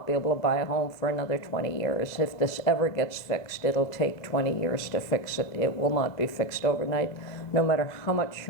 be able to buy a home for another 20 years. If this ever gets fixed, it'll take 20 years to fix it. It will not be fixed overnight. No matter how much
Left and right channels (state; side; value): late; right; 2.0 ms